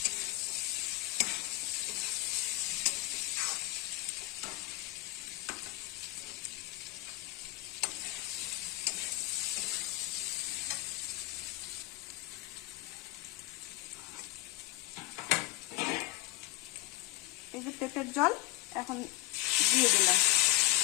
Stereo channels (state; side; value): quieter; right; 18.7 dB